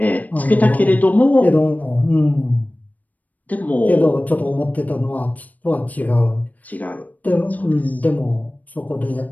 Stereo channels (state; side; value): late; right; 0.077 ms